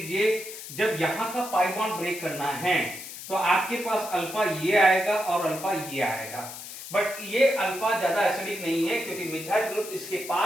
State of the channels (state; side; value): noise; left; hiss, 11 dB below the sound